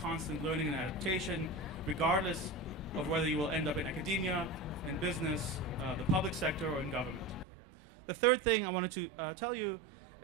constant learning and adaptation, regardless of whether you will end up in academia, in business, the public sector, or in government. The third thing I wanted to tell you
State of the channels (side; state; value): left; drops out; at 7.5 s